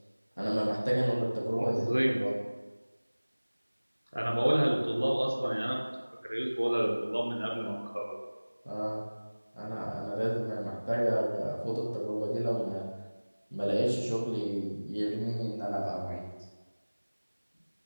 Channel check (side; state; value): both; inverted; correlation -1.00